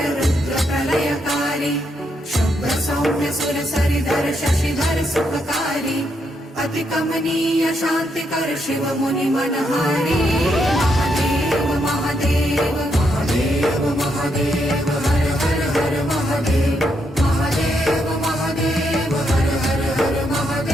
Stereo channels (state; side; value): normal; both; correlation 0.78